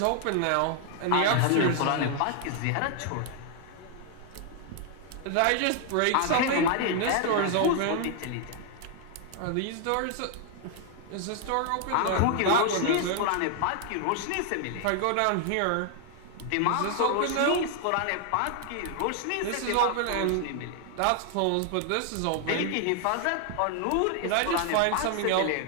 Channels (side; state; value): both; different; correlation 0.00